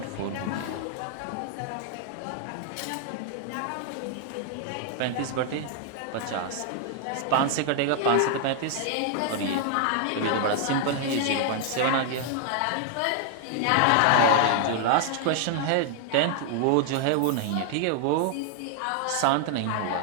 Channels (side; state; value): both; different; correlation 0.00